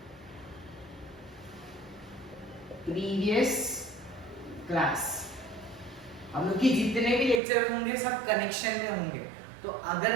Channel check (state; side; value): drops out; left; at 7.4 s